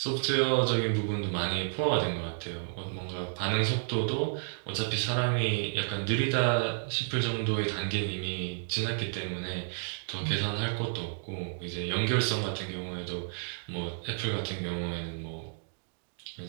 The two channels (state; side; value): silent; left; digital silence